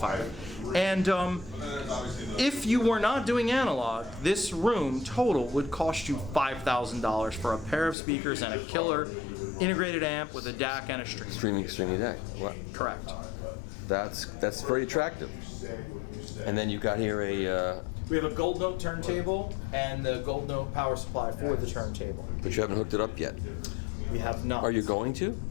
And if you were not doing analog, this room total would cost you $5,000 for a pair of speakers and a killer integrated amp with a DAC and a streamer. Streaming DAC. Wow. Correct. That's very attractive. And then you've got here a. We have a Gold Note turntable and the Gold Note power supply for the turntable. But you haven't hooked it up yet. We have not. Are you going to?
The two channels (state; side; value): drops out; right; at 8.0 s